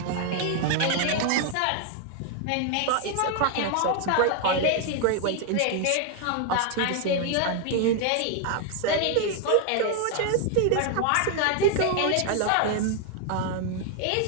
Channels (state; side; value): different; both; correlation 0.00